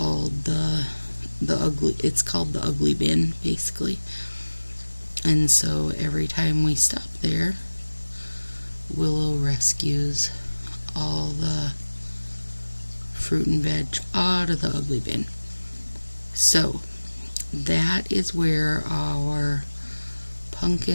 it's called the ugly bin, basically. And so every time we stop there, Willow rescues all the fruit and veg out of the ugly bin. So that is where our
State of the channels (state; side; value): inverted; both; correlation -1.00